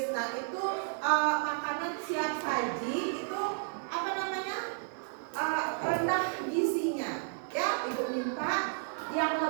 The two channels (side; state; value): left; silent; digital silence